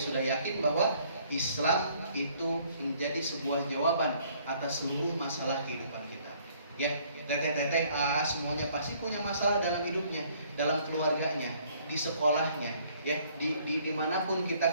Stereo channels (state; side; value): inverted; both; correlation -0.61